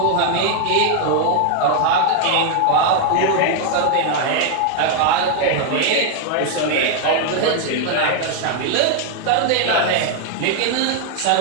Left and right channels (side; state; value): both; different; correlation 0.00